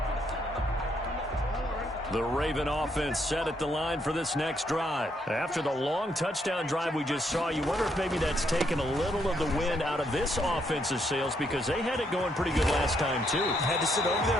The Raven offense set at the line for this next drive. After the long touchdown drive we just saw, you wonder if maybe that's taken a little of the wind out of this offense's sails because they had it going pretty good last time, too. Had to sit over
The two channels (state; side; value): normal; both; correlation 0.74